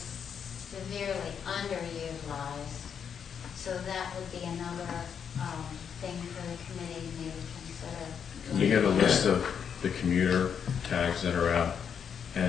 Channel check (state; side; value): quieter; right; 7.5 dB